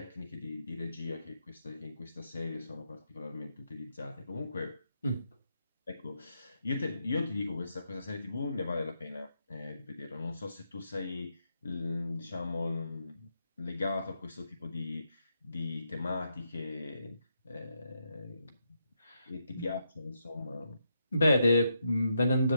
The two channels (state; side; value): inverted; both; correlation -0.82